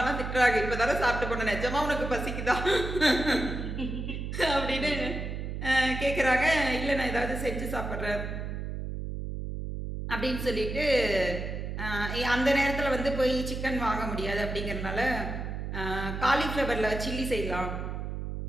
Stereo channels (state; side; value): noise; right; hum, 5 dB below the sound